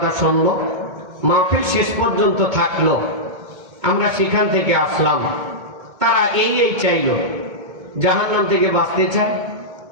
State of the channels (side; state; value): left; late; 1.7 ms